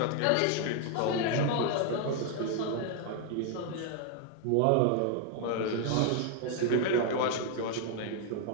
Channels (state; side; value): different; both; correlation 0.00